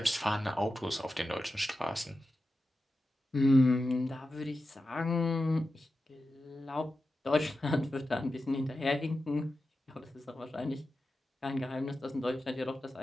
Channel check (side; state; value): both; normal; correlation 0.92